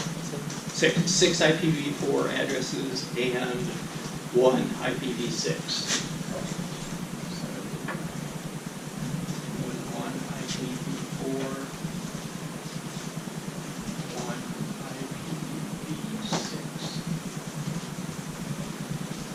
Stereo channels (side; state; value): both; identical; correlation 1.00